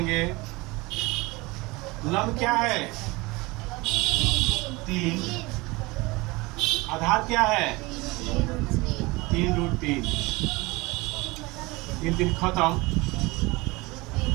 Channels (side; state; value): left; quieter; 23.2 dB